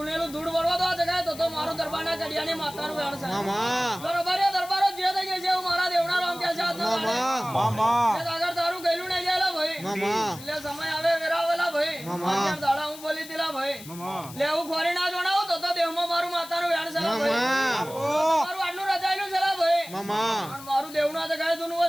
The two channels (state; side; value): noise; left; hiss, 16 dB below the sound